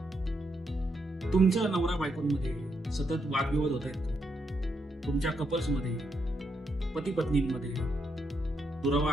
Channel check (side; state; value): both; normal; correlation 0.79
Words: तुमच्या नवरा बायकोंमध्ये सतत वादविवाद होत आहेत. तुमच्या कपल्समध्ये, पती पत्नींमध्ये दुरावा